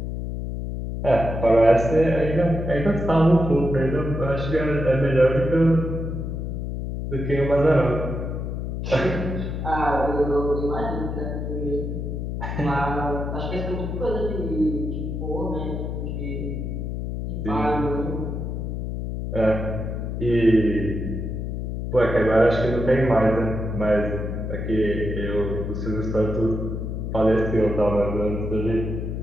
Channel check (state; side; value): noise; left; hum, 4 dB below the sound